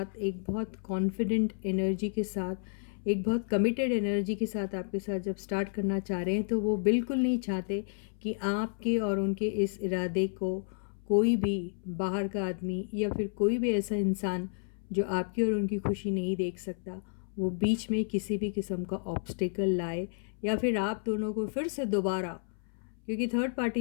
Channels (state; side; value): silent; right; 57 dB below the other